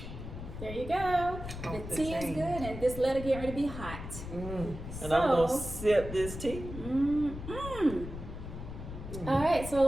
There you go. The Off the tea is chain. good, and this letter get ready to be hot. And I'm going to sip this tea. All right,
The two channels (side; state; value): left; noise; rumble, 9 dB below the sound